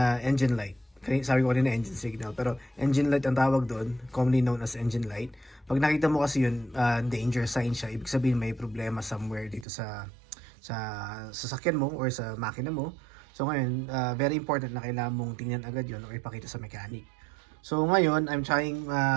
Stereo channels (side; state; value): left; drops out; at 9.7 s